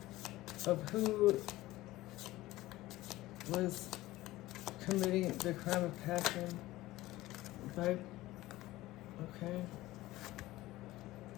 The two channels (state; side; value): quieter; right; 17.4 dB